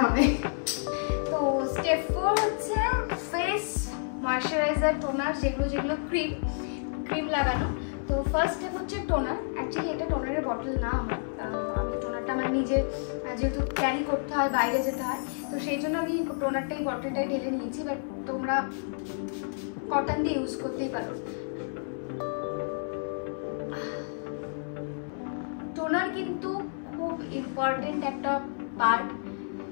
হবে। তো স্টেপ 4 হচ্ছে ফেস ময়শ্চারাইজার, টোনার, যেগুলো ক্রিম লাগানো। তো ফার্স্ট স্টেপ হচ্ছে টোনার। অ্যাকচুয়ালি এটা টোনারের বটল না আমার, আমি টোনারটা আমার নিজের যেহেতু ক্যারি করতে হয়, বাইরে যেতে হয়, তো সেই জন্য আমি টোনারটাই বটলটাই ঢেলে নিয়েছি। বাট তোমরা কটন দিয়ে ইউজ করতেই পারো। টোনার কিন্তু খুব ইম্পর্টেন্ট একটা পার্ট।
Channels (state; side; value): silent; right; 58 dB below the other